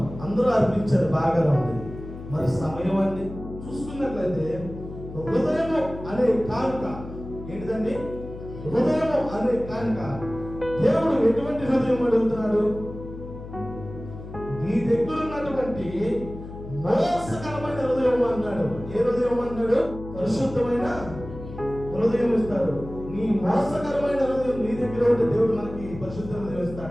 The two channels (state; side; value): noise; left; hum, 12 dB below the sound